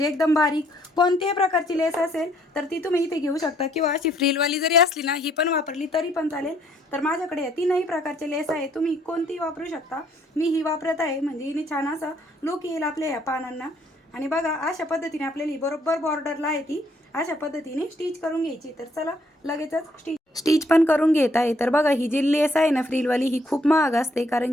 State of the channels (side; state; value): both; normal; correlation 0.67